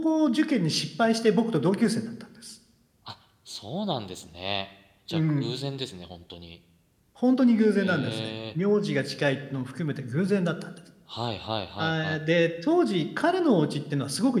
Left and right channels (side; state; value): both; identical; correlation 1.00